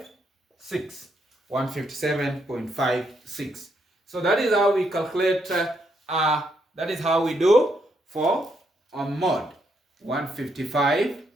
157.56. So that is how we calculate, that is how we do for mode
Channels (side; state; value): both; normal; correlation 0.76